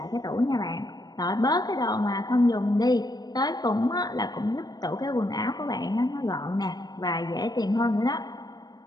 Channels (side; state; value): right; late; 0.19 ms